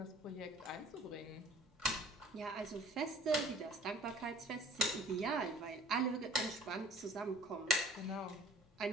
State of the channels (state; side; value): normal; both; correlation 0.49